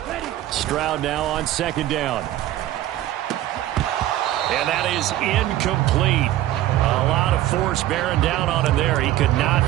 Stroud now on 2nd down. And that is incomplete. A lot of force bearing down on him there. He could not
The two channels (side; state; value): left; quieter; 14.0 dB